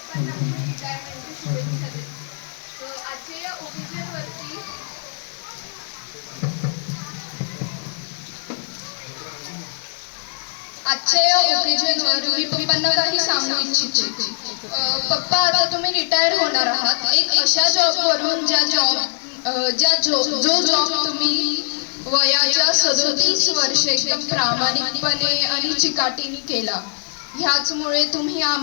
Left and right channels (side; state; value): right; silent; digital silence